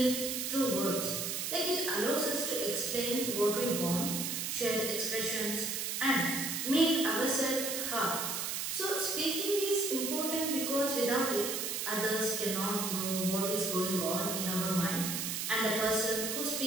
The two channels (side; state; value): right; noise; hiss, 2 dB below the sound